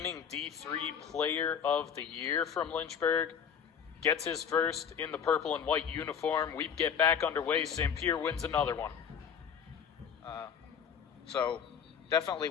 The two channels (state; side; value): quieter; right; 7.4 dB